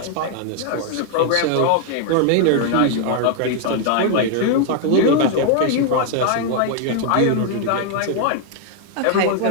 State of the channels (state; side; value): different; both; correlation 0.00